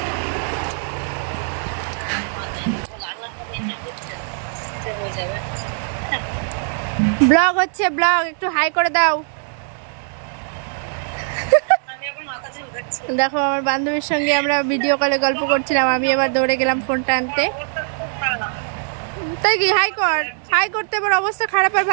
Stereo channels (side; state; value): left; silent; 65 dB below the other